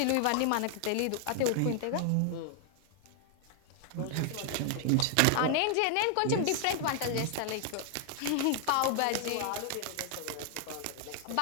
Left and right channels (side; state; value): both; different; correlation 0.00